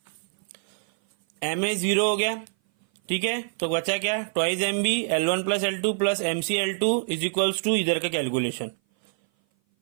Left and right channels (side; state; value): left; silent; 57 dB below the other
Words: MA 0 हो गया, ठीक है। तो बचा क्या? Twice MB L1 plus L2 plus MCL2 is equals to इधर का कैलकुलेशन।